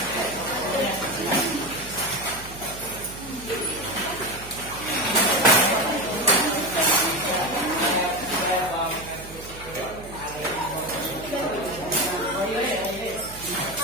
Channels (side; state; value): right; noise; hum, 15 dB below the sound